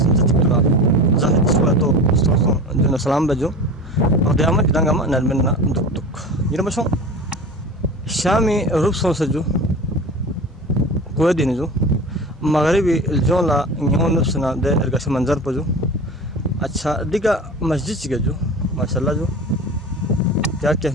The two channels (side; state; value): both; normal; correlation 0.33